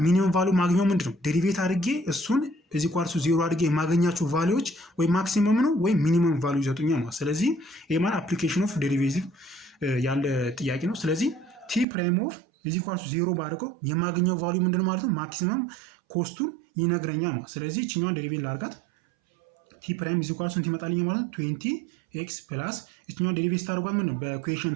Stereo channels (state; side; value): drops out; left; at 11.9 s